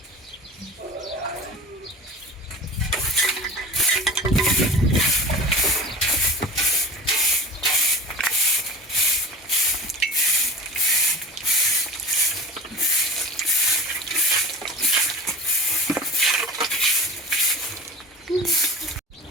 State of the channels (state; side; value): normal; both; correlation 0.36